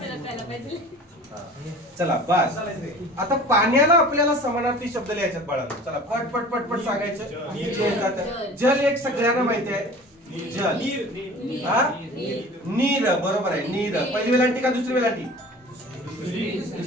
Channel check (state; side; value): normal; both; correlation 0.42